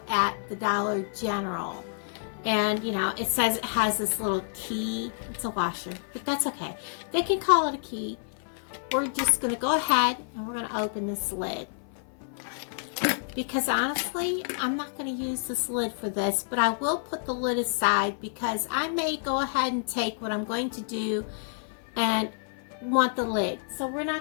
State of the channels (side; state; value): right; silent; 56 dB below the other